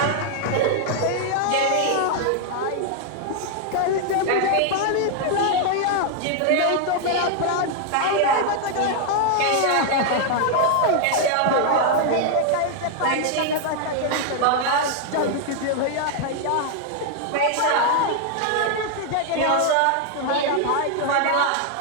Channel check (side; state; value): both; different; correlation 0.00